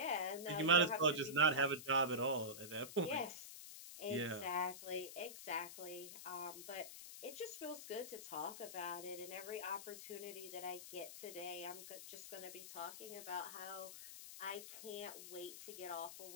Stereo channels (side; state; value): left; noise; hiss, 11 dB below the sound